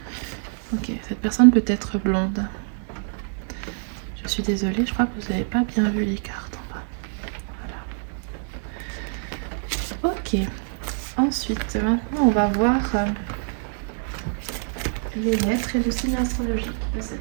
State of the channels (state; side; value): silent; left; 62 dB below the other